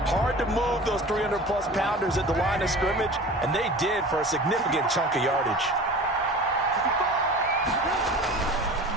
Hard to move those 300-plus pounders at the line of scrimmage, and they did for a significant chunk of yardage.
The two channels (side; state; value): both; normal; correlation 0.38